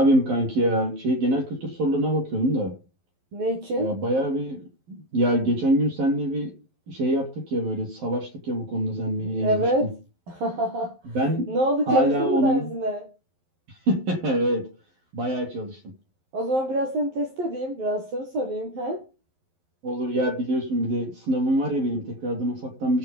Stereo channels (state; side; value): late; left; 11 ms